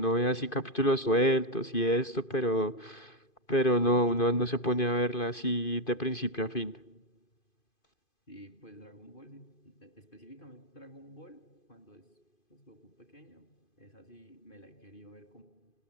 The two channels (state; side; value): late; right; 2.5 ms